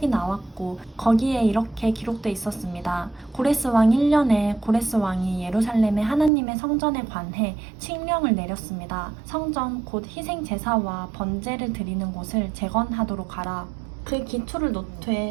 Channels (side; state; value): left; drops out; at 6.3 s